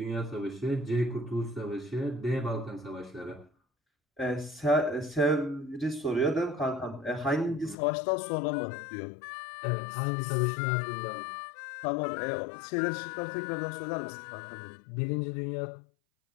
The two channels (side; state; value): right; drops out; at 7.8 s